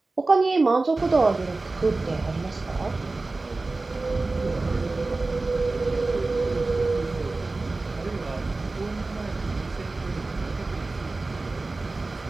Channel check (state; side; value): quieter; left; 3.4 dB